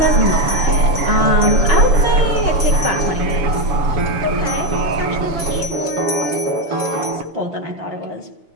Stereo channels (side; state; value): left; late; 7.0 ms